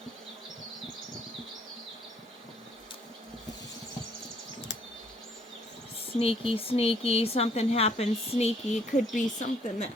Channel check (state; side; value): normal; both; correlation 0.63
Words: Sneaky, sneaky, something happens sneaky. It could be something that